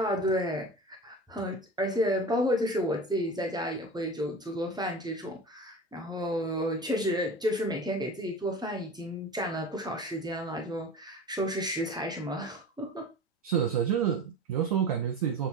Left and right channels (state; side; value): normal; both; correlation 0.34